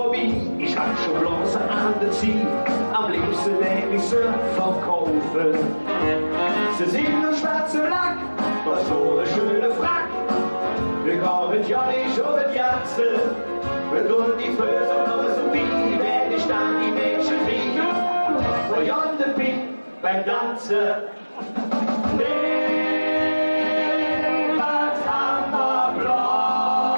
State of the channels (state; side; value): inverted; both; correlation -1.00